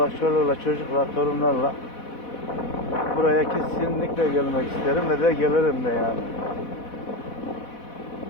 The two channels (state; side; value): late; right; 4.1 ms